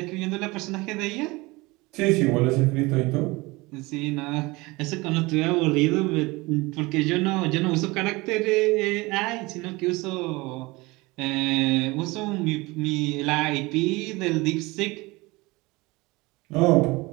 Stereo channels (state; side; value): quieter; left; 23.1 dB